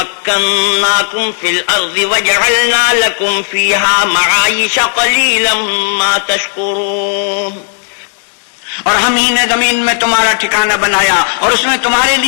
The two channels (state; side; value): silent; right; 61 dB below the other